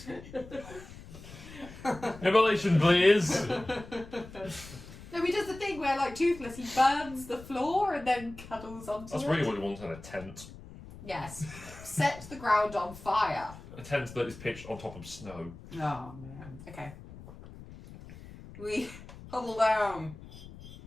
me. Immolation, please. No, he does the thing where, like Toothless, he burns the floor and then cuddles onto That's it. really what he wants in a tent. Yes. Set the ground on fire. A tent that is pitched on top of snow. Oh, man. Okay. We huddle down.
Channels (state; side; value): noise; left; rumble, 16 dB below the sound